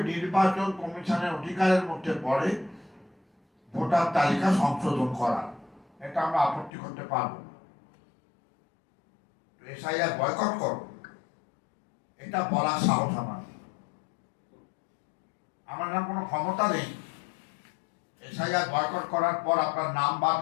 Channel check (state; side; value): drops out; right; at 6.7 s